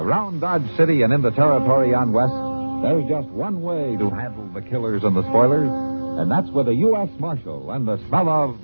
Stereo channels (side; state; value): both; inverted; correlation -1.00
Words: Dodge City and in the territory on West, there's just one way to handle the killers and the spoilers, and that's with a U.S. Marshal and the smell of